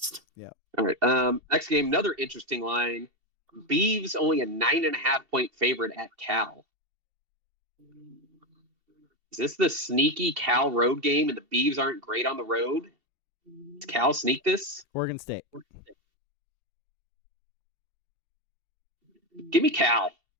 Yeah. All right. Next game, another interesting line. Beavs only a 9.5 point favorite at Cal. Is this the sneaky Cal road game and the Beavs aren't great on the road? Does Cal sneak this? Oregon State. Give me Cal.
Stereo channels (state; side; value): late; left; 2.7 ms